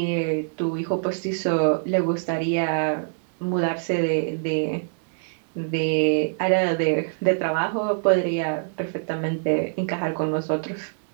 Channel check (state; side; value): silent; left; digital silence